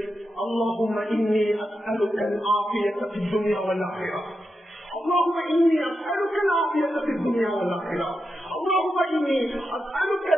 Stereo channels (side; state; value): both; normal; correlation 0.88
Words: அல்லாஹும்ம இன்னி அஸ்அலுக அல்-ஆஃபியத ஃபித் துன்யா வல் ஆখিরাহ, اللهم إني أسألك العافية في الدنيا والآخرة، اللهم إني أسألك